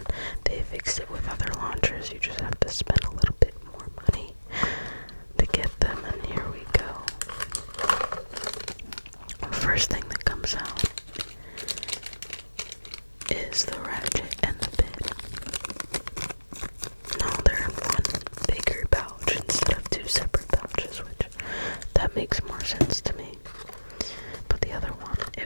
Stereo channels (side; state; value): both; inverted; correlation -1.00